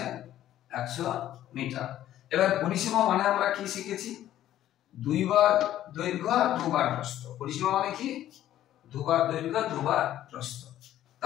100 মিটার। এবার পরিসীমা মানে আমরা কি শিখেছি? 2 বার দৈর্ঘ্য আর 2 বার প্রস্থ। পরিসীমা মানে কি? 2 বার দৈর্ঘ্য, 2 বার প্রস্থ।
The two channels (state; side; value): quieter; right; 12.5 dB